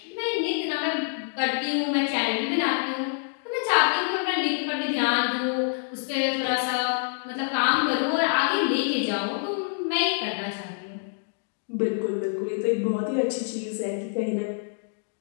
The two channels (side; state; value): right; silent; digital silence